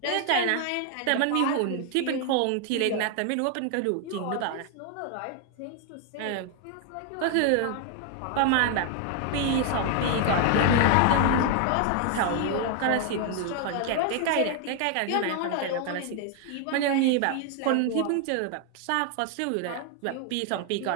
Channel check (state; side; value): different; both; correlation 0.00